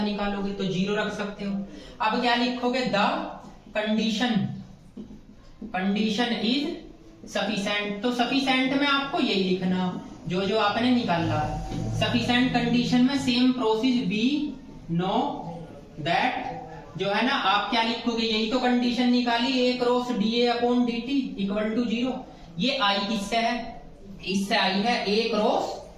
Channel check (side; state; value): both; identical; correlation 1.00